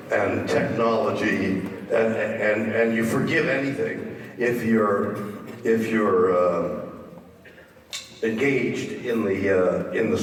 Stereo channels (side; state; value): both; identical; correlation 1.00